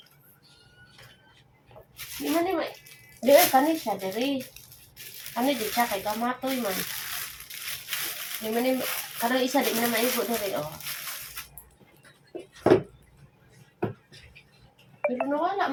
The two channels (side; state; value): both; identical; correlation 1.00